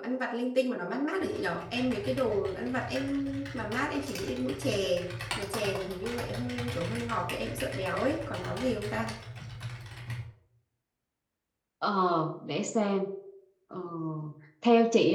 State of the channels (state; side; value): identical; both; correlation 1.00